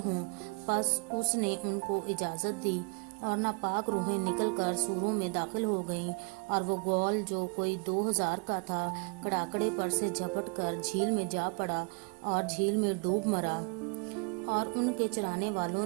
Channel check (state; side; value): quieter; left; 34.6 dB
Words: ہوں۔ پس اس نے ان کو اجازت دی، اور ناپاک روحیں نکل کر سوروں میں داخل ہو گئیں، اور وہ غول جو کوئی 2000 کا تھا کڑاکڑے پر سے جھپٹ کر جھیل میں جا پڑا اور جھیل میں ڈوب مرا۔ اور ان کے چرانے والوں